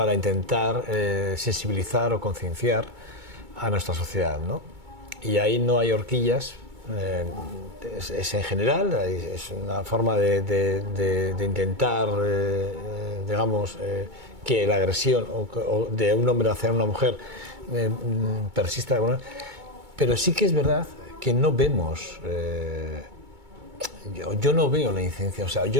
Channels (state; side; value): late; left; 2.2 ms